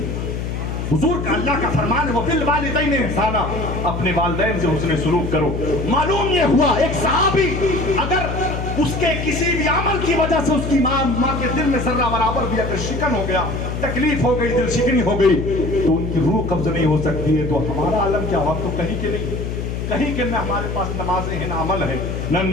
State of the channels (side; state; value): left; noise; hum, 4 dB below the sound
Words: حضور کا اللہ کا فرمان ہے وہ بالوالدین احسانا, اپنے والدین سے حسن سلوک کرو. معلوم یہ ہوا ایک صحابی اگر اس کے کسی بھی عمل کی وجہ سے اس کی ماں کے دل میں ذرہ برابر بھی اگر شکن ہو گیا, تکلیف ہو گئی, دل شکنی ہو گئی تو ان کی روح قبض نہیں ہو سکتی ہے. تو ہمارا عالم کیا ہوا, تو کہیں کے نہیں, کہیں کہ نہ ہمارے پاس نمازیں ہیں, نہ عمل ہے, نہ